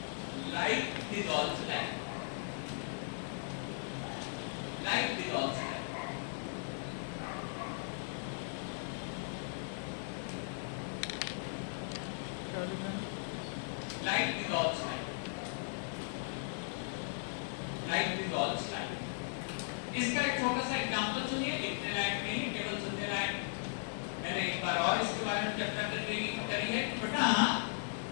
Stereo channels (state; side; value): silent; right; digital silence